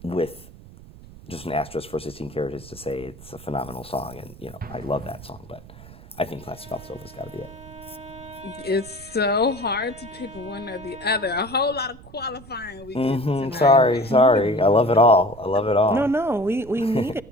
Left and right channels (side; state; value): right; noise; rumble, 19 dB below the sound